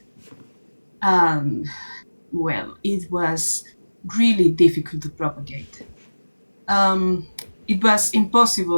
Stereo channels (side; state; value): both; inverted; correlation -1.00